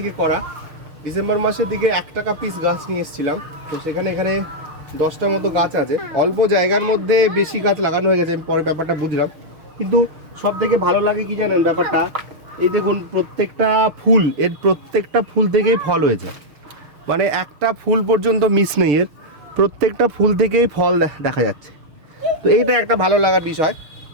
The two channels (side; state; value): left; late; 6.5 ms